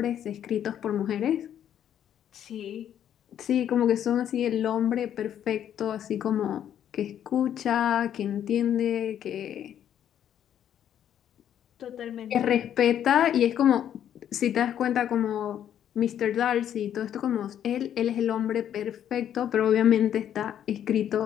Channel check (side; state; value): right; quieter; 10.0 dB